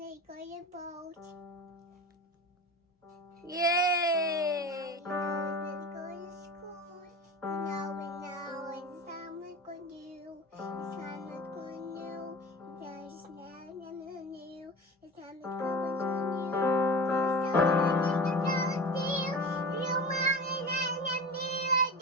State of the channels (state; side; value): normal; both; correlation 0.32